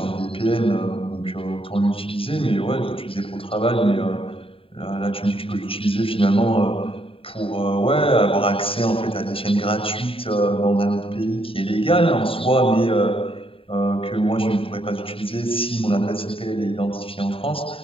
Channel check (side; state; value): right; late; 0.27 ms